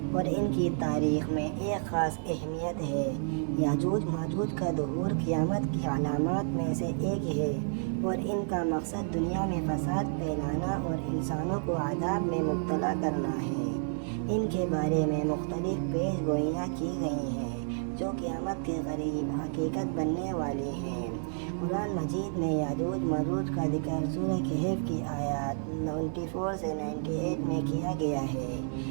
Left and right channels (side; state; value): left; silent; digital silence